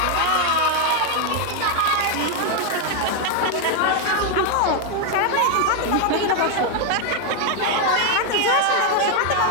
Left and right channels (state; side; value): different; both; correlation 0.01